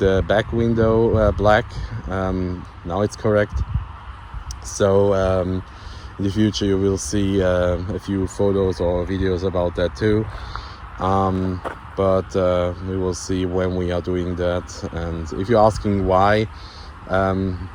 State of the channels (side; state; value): both; identical; correlation 1.00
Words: back window black. Now it's correct. So in the future you will see a few photos or videos about that too. But we will see when we are doing that. And if you're asking why,